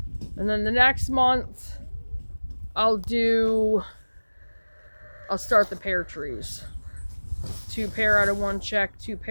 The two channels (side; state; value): both; inverted; correlation -1.00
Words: And then the next month, I'll start the pear trees. 2 pear out of 1 check, 2